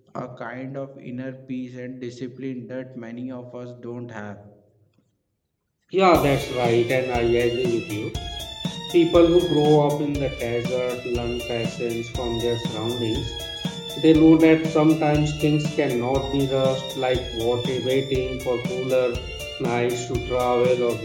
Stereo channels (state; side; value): identical; both; correlation 1.00